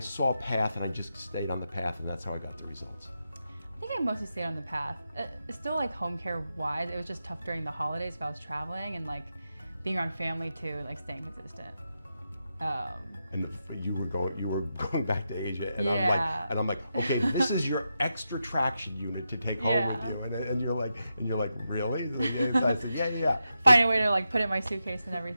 a path and I just stayed on the path and that's how I got the results? I think I mostly stayed on the path. Still like home care wise, it was just tough during the holidays if I was traveling, and like being around family too, like staying consistent. And you were going back to Asia, and Yeah. I'm like, okay, this is your extra traction unit to take home Yeah. with you, and you're like, really? I said, yeah. Find a way to like put it in my suitcase and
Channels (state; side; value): inverted; both; correlation -0.87